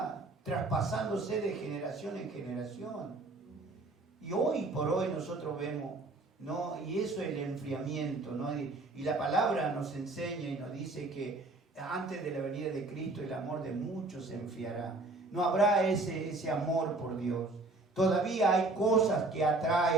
traspasándose de generación en generación. Y hoy por hoy nosotros vemos, ¿no? Y eso es el enfriamiento, ¿no? Y la palabra nos enseña y nos dice que antes de la venida de Cristo el amor de muchos se enfriará. No habrá ese amor por Dios. Todavía hay cosas que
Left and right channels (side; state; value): left; quieter; 3.0 dB